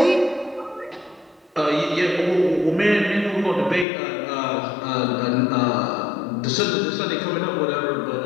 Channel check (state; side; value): drops out; right; at 3.9 s